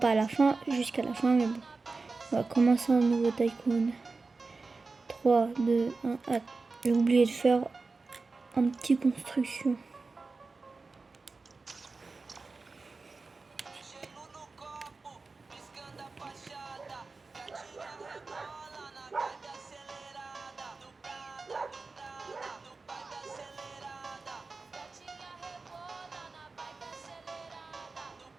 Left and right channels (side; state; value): left; quieter; 3.9 dB